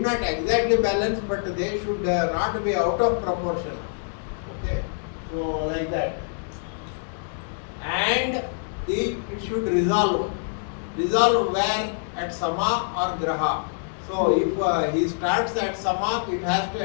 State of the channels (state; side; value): silent; right; digital silence